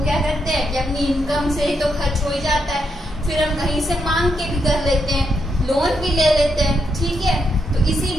क्या करते हैं कि अपनी इनकम से ही तो खर्च हो ही जाता है, फिर हम कहीं से मांग के भी कर लेते हैं, लोन भी ले लेते हैं। ठीक है, तो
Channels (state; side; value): normal; both; correlation 0.80